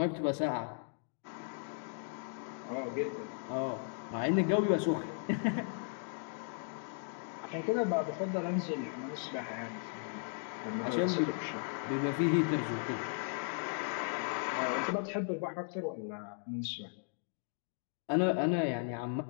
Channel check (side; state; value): right; silent; 54 dB below the other